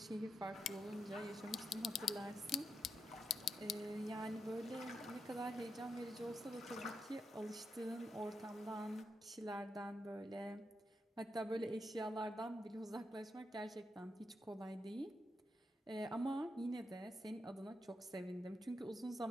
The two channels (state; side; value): normal; both; correlation 0.84